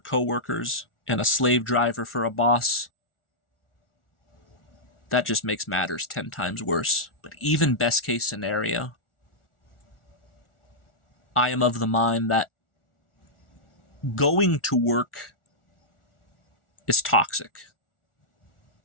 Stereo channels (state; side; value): late; right; 1.4 ms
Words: and a slave driver for a boss, that just makes matters 10 times worse. But even best case scenario, I am of the mind that going to work is toxic.